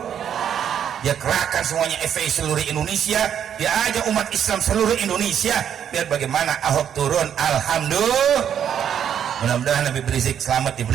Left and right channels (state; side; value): quieter; left; 9.0 dB